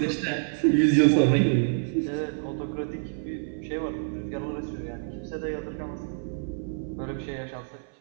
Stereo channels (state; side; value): silent; left; 57 dB below the other